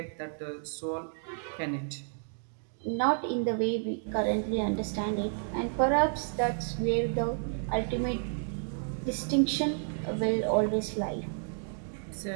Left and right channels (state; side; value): silent; left; digital silence